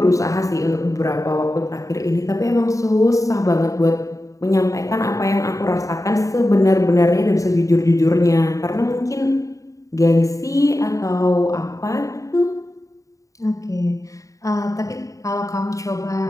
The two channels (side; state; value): right; late; 0.16 ms